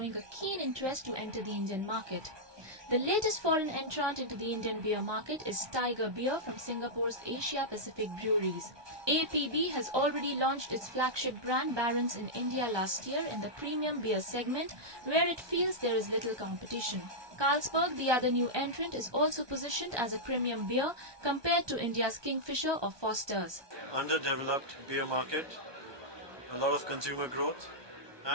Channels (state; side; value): late; left; 1.2 ms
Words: a keen interest to enter the Indian market. The latest foreign entrant into the Indian beer market is Tiger Beer from Singapore's Asia Pacific Breweries. APB has already launched its flagship brand Barons in India last year in the premium beer segment, where it feels there is little competition. Carlsberg, the other new entrant, is also positioned as a premium beer compared to India's Kingfisher or Foster's. Underdeveloped beer market, a lot of consumer growth,